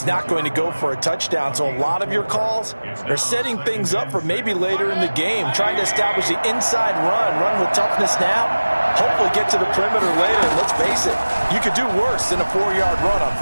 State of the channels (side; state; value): both; inverted; correlation -1.00